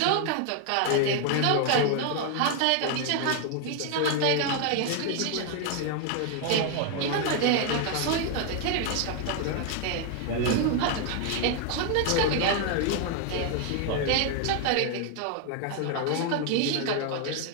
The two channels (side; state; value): both; different; correlation 0.00